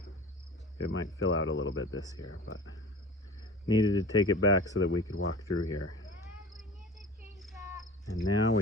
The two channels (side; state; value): both; normal; correlation 0.37